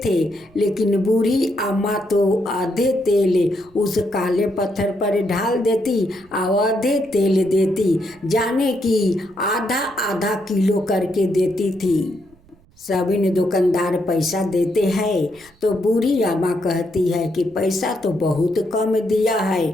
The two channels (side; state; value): right; noise; rumble, 29 dB below the sound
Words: थे, लेकिन बूढ़ी अम्मा तो आधे तेल उस काले पत्थर पर ढाल देती और आधे तेल देती, जाने कि आधा आधा किलो करके देती थी। सभी दुकानदार पैसा देते हैं तो बूढ़ी अम्मा कहती है कि पैसा तो बहुत कम दिया है।